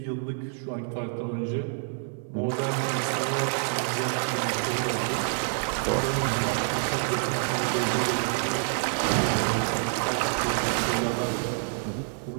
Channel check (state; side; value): silent; left; digital silence